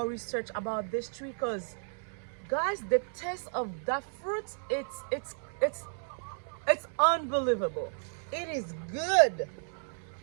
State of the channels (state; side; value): silent; left; 56 dB below the other